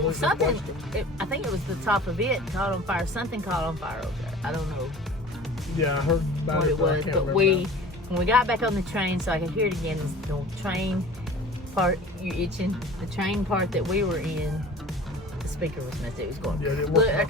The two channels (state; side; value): normal; both; correlation 0.42